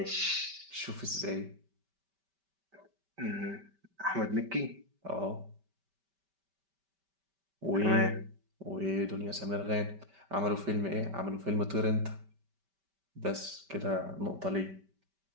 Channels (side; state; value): left; late; 5.1 ms